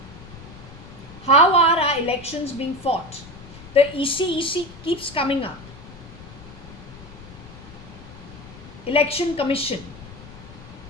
How are our elections being fought? The EC keeps coming up. Election Commission.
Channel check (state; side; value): noise; left; rumble, 17 dB below the sound